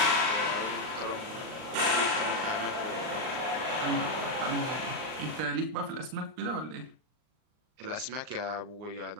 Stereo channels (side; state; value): left; late; 39 ms